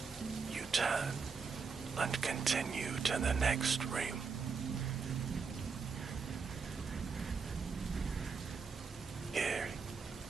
you turn and continue to the next room. Here,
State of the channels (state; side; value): quieter; left; 5.3 dB